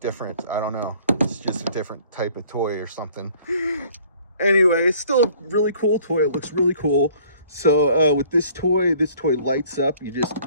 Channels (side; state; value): both; inverted; correlation -0.55